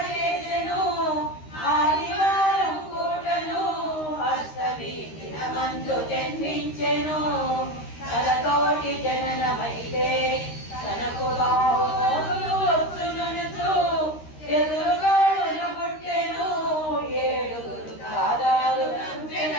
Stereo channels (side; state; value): right; late; 13 ms